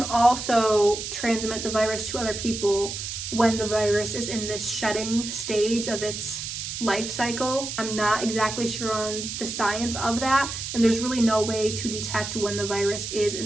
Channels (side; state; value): right; noise; hiss, 6 dB below the sound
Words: also transmit the virus to other people when the virus is in this shedding stage of its life cycle. I'm not exactly sure on the science of that, and there's really no way to detect when the virus is